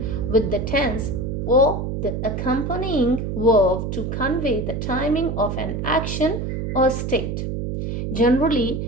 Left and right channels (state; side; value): noise; right; hum, 3 dB below the sound